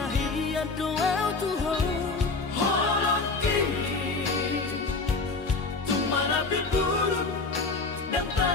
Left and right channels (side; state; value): right; quieter; 3.9 dB